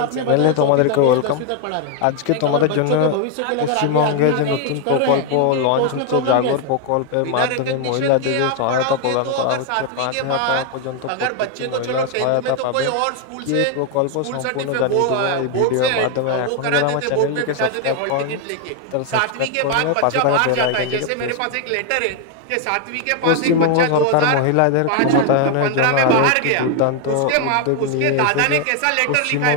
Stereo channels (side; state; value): both; different; correlation 0.00